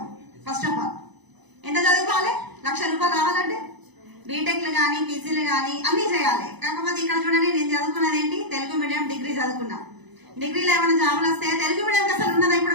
ఫస్ట్ ఆఫ్ ఆల్ ఎంత చదువుకోవాలి? ₹1,00,000 రావాలంటే బీటెక్లు కానీ పీజీలు కానీ అన్ని చేయాలి. కాకపోతే ఇక్కడ చూడండి, నేను చదువుకున్నది ఏంటి? తెలుగు మీడియం డిగ్రీ చదువుకున్నా. డిగ్రీలో ఏమైనా జాబులు వస్తే తెలుగు మీడియం అసలు ఉన్నదా?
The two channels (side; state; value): left; late; 0.99 ms